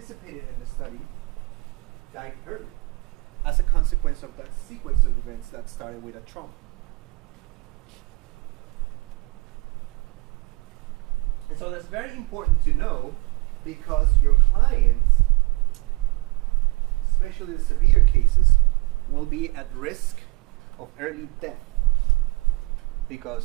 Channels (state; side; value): quieter; left; 24.5 dB